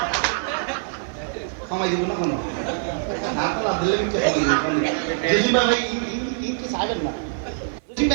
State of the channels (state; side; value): silent; left; 57 dB below the other